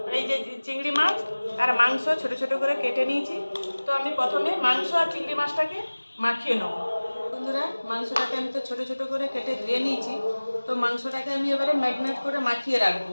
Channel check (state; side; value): inverted; both; correlation -1.00